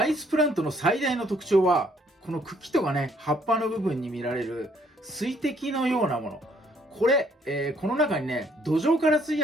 イスプラントの最大の特徴は、この茎とかね、葉っぱの部分に見られる水滴のようなもの。これ、この中にね、土壌から吸い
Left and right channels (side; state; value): both; normal; correlation 0.66